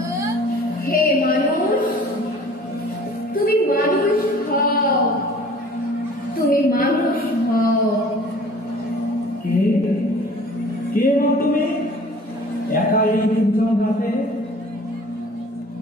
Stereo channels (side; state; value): both; normal; correlation 0.48